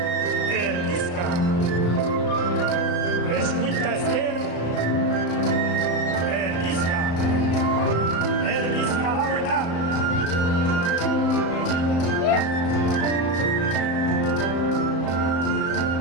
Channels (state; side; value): late; right; 35 ms